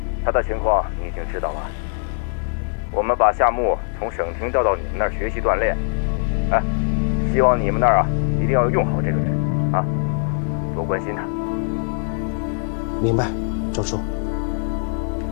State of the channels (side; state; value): right; silent; 64 dB below the other